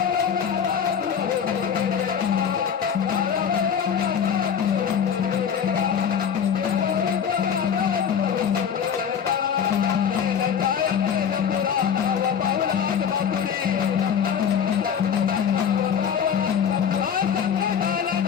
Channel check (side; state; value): right; quieter; 7.7 dB